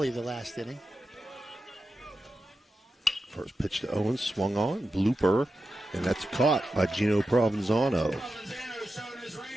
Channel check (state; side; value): normal; both; correlation 0.90